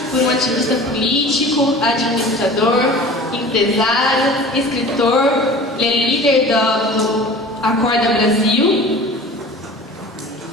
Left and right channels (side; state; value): both; normal; correlation 0.41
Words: por um ativista político, administrador, empresário, escritor, ele é líder do Acorda Brasil